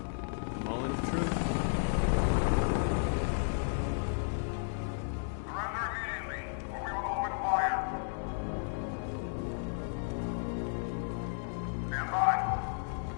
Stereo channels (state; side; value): silent; right; digital silence